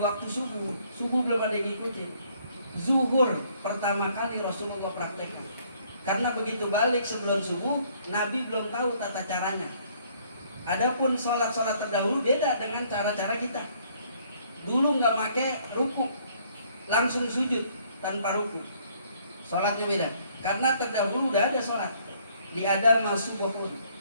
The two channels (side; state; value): both; inverted; correlation -0.64